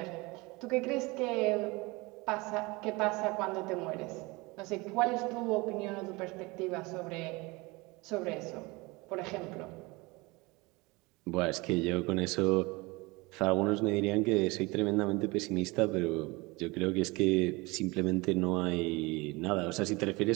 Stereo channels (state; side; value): quieter; left; 24.3 dB